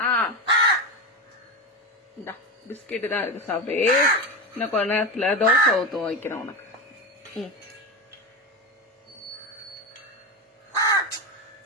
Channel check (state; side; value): normal; both; correlation 0.18